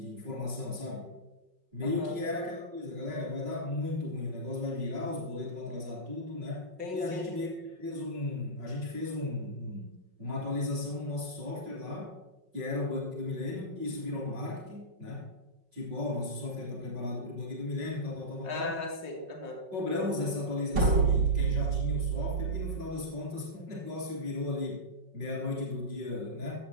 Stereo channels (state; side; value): late; left; 5.5 ms